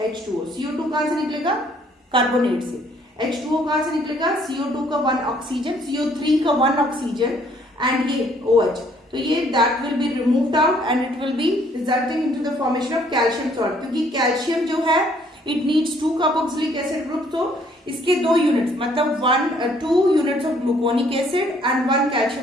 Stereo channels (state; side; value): normal; both; correlation 0.63